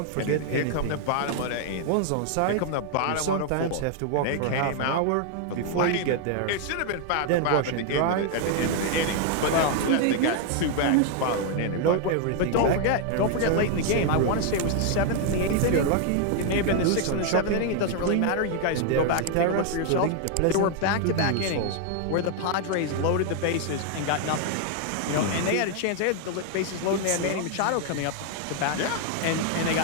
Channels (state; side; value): different; both; correlation 0.00